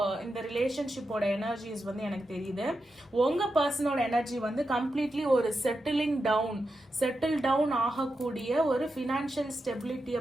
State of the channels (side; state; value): both; normal; correlation 0.88